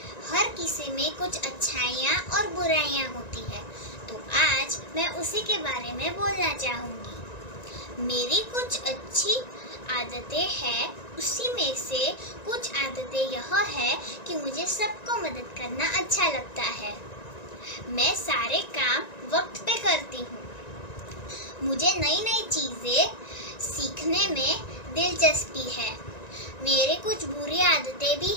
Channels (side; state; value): right; late; 1.9 ms